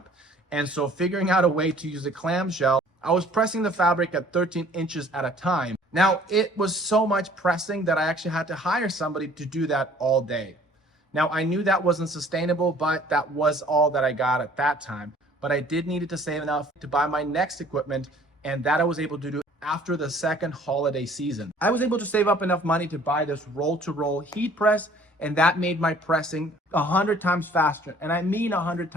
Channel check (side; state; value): both; normal; correlation 0.54